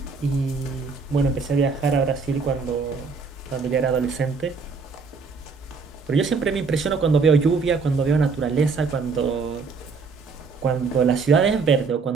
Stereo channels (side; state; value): left; quieter; 4.7 dB